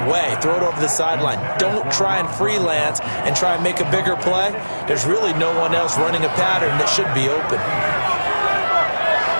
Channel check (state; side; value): inverted; both; correlation -1.00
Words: away, throw it over the sideline. Don't try and freelance and try and make a bigger play. There's really no one else running a pattern that should be open.